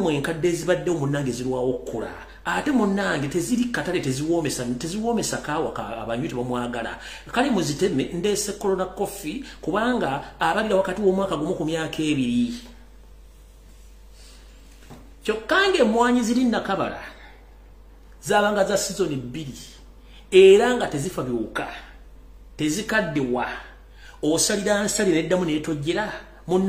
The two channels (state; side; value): identical; both; correlation 1.00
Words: enkadde ezibadde munnange zirwawo okukula ate munnange teziri katale teziwoomesa kaawa abanywi tebamwagala kale muziteme ndeese corona coffee kubanga abalira wakati w'omwaka gumu ku myaka 2 Kyokka emmwanyi ziri Nakabala zabanga za season 2 era nga tezifa biwuka tezikaddewa osalira nsalira eddamu neetojjera